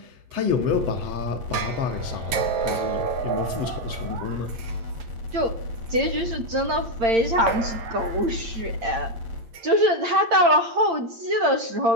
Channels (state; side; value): late; left; 9.2 ms